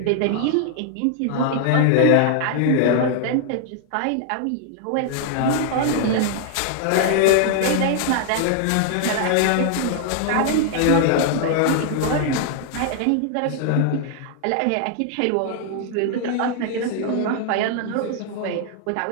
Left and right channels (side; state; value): both; different; correlation 0.00